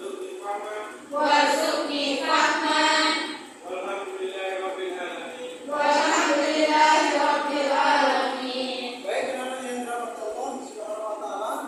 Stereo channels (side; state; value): both; identical; correlation 1.00